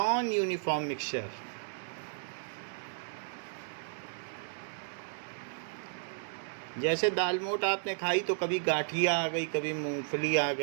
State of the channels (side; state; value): left; silent; digital silence